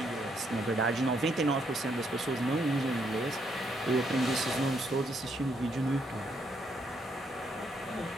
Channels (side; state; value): both; normal; correlation 0.74